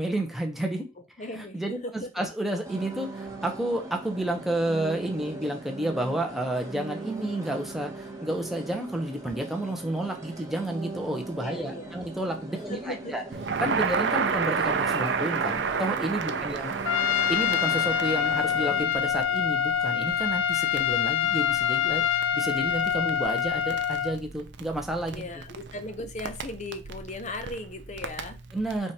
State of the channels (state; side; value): normal; both; correlation 0.36